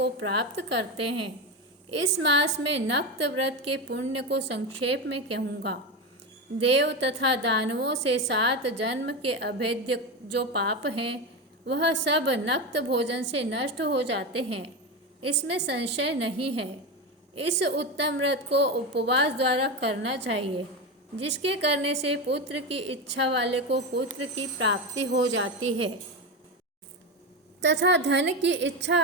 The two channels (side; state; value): both; normal; correlation 0.16